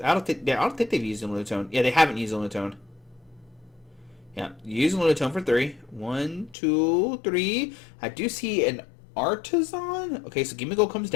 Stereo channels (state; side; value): drops out; right; at 6.6 s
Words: I don't think they've used a Lunatone. Yeah, they haven't used a Lunatone. Yeah, use a Lunatone for 3. 1, 2, 3. I do see an Artisan. Okay, so Gimmighoul comes